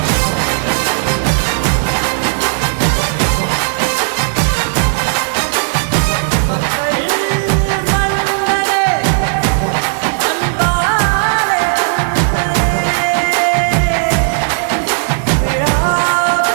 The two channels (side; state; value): left; silent; digital silence